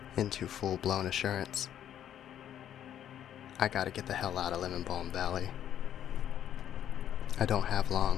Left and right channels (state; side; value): quieter; right; 10.4 dB